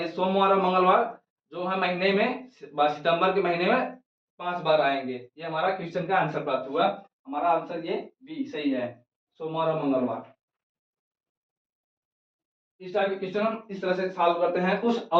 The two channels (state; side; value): identical; both; correlation 1.00